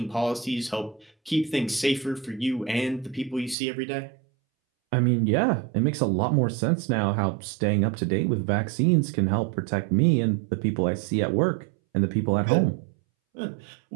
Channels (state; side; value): drops out; left; at 3.6 s